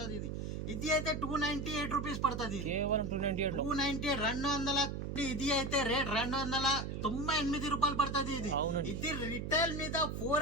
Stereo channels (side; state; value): right; noise; hum, 4 dB below the sound